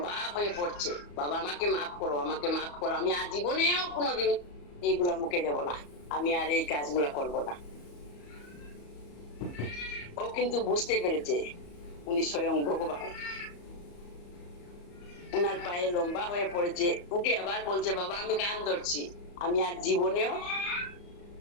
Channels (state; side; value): late; right; 34 ms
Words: হয়ে পড়ছে, বাবা আমাকে মাফ করো, আমাকে মাফ করো, আমি আর জীবনেও কোনোদিন এইগুলা মুখে দেব না, আমি আর এই কাজগুলা করব না। ও কিন্তু বুঝতে পেরেছে উনি স্বয়ং ভগবান। উনার পায়ে লম্বা হয়ে পড়েছে, উঠে আবার বলছে, বাবা আমি কান ধরছি, আমি আর জীবনেও